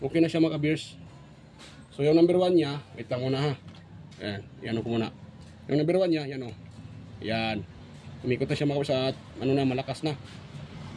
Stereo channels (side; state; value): both; identical; correlation 1.00